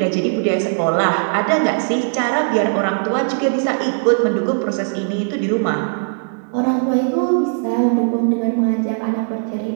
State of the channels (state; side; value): silent; left; digital silence